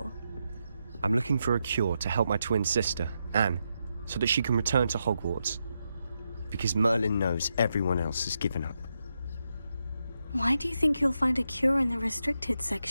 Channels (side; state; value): both; inverted; correlation -0.84